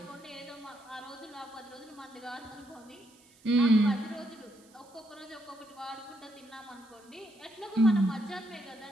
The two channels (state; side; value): noise; right; hiss, 27 dB below the sound